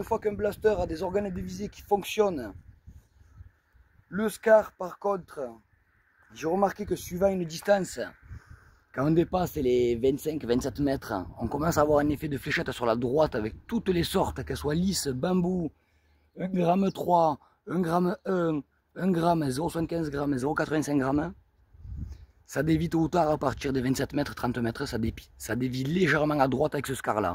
fois qu'un blaster a des organes de visée qui fonctionnent, le SCAR par contre, j'ai remarqué que suivant une distance, quand on dépasse les 25-27 mètres, on commence à avoir un effet de fléchette sur la droite avec toutes les sortes, qu'elles soient lisses, bambou, 1 g 3, 1 g 1, 1 g, 0,75 g, 0,85 g. Ça dévie tôt ou tard à partir des 27 mètres, 30 mètres, ça dévie légèrement à droite avec ce SCAR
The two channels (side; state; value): both; identical; correlation 1.00